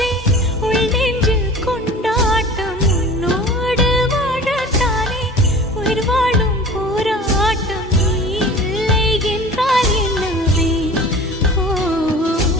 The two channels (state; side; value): normal; both; correlation 0.41